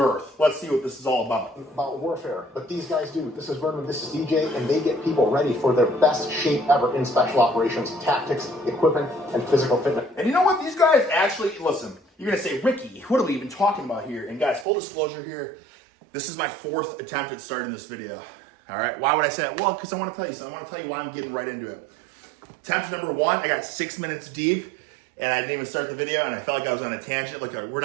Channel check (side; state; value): left; drops out; at 14.7 s